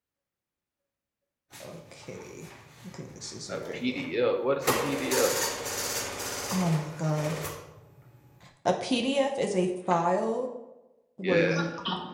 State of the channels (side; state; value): both; identical; correlation 1.00